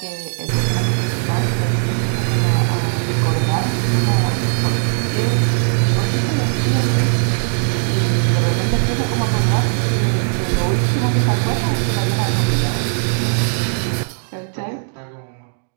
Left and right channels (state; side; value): silent; left; digital silence